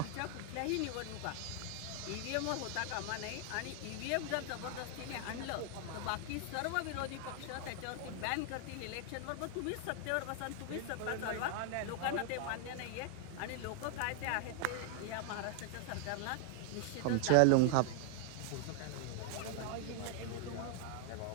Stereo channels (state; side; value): different; both; correlation 0.00